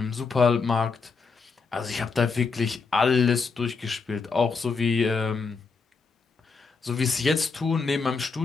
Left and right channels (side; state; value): right; quieter; 4.7 dB